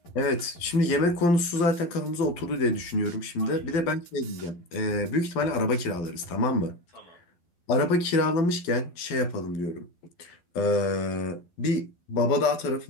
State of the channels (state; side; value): late; right; 12 ms